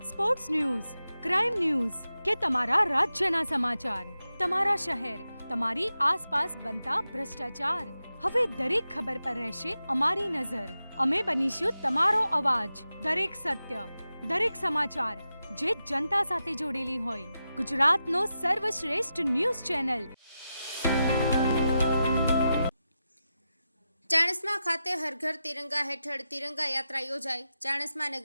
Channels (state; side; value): inverted; both; correlation -0.90